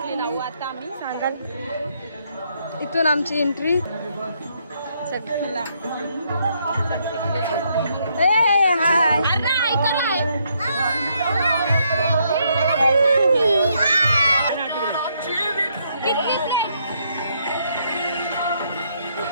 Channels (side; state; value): both; inverted; correlation -0.74